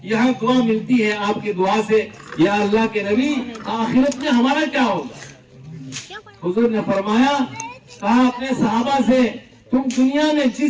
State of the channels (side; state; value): both; identical; correlation 1.00